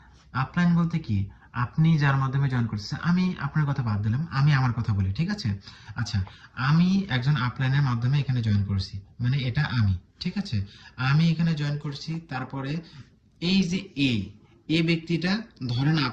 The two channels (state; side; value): identical; both; correlation 1.00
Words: আপলাইন বলতে কি, আপনি যার মাধ্যমে জয়েন করতেছেন, আমি আপনার কথা বাদ দিলাম, আমি আমার কথা বলি, ঠিক আছে? আচ্ছা, আমি একজন আপলাইনের মাধ্যমে এখানে জয়েন করছি, মানে এটা আমি, ঠিক আছে? আমি এখানে জয়েন করছি। তারপরে এই যে এ ব্যক্তিটা, ধরেন